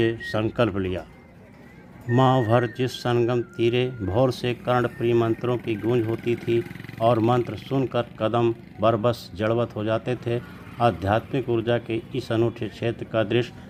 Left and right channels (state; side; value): identical; both; correlation 1.00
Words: संकल्प लिया। माह भर जिस संगम तीरे भोर से कर्णप्रिय मंत्रों की गूंज होती थी और मंत्र सुनकर कदम बरबस जड़वत हो जाते थे, आध्यात्मिक ऊर्जा के इस अनूठे क्षेत्र का दृश्य